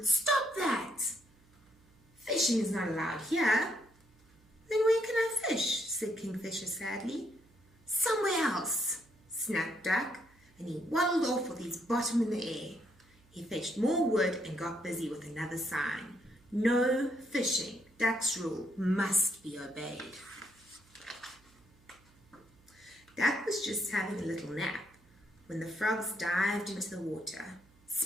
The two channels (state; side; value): noise; right; hum, 30 dB below the sound